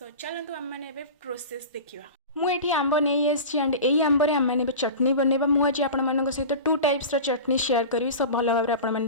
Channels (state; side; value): inverted; both; correlation -0.31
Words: चलतु आम मैंने प्रोसेस देखा। मुझे आंब नहीं आसी एंड यही आंबर आम मैंने चटनी बनवा मुझे आपण सहित टू टाइप्स चटनी शेयर करी सब भल भाव आपने